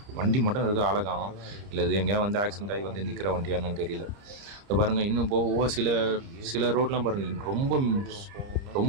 வண்டி மட்டும் இருக்குது, ஆளை காணோம். இல்லை இது எங்கேயா வந்து ஆக்சிடென்ட் ஆகி வந்து நிற்கிற வண்டியானு தெரியல. இப்போ பாருங்கள், இன்னும் போக சில ரோட்லாம் பாருங்கள்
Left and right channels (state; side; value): late; left; 30 ms